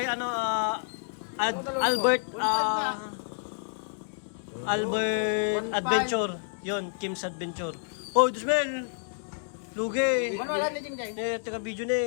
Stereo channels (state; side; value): silent; right; digital silence